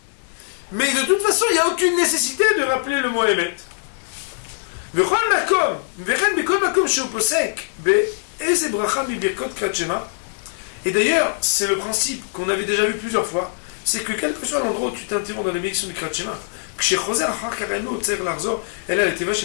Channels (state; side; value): silent; right; digital silence